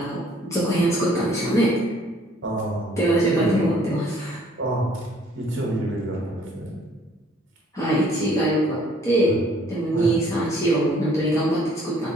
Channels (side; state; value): both; normal; correlation 0.60